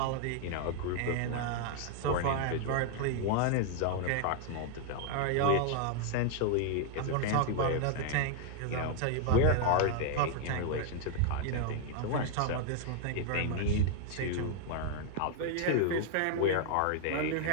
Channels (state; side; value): different; both; correlation 0.00